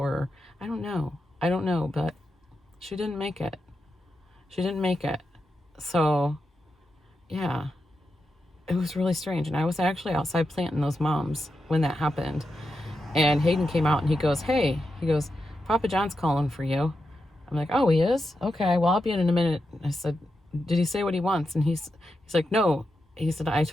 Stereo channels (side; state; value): both; normal; correlation 0.88